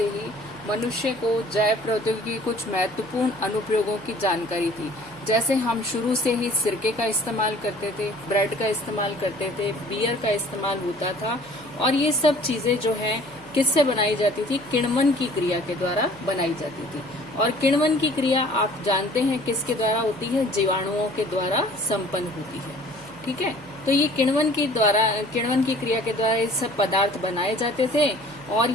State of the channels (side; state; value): right; noise; hum, 23 dB below the sound